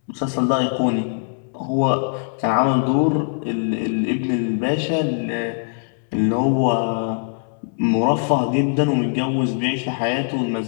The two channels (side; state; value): right; silent; 65 dB below the other